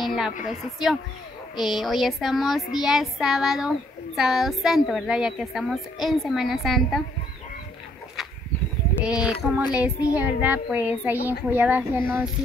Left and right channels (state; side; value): normal; both; correlation 0.68